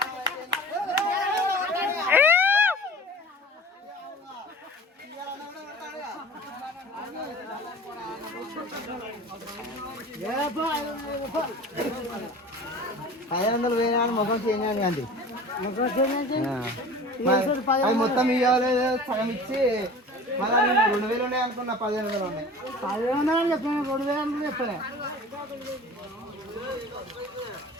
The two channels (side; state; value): both; normal; correlation 0.40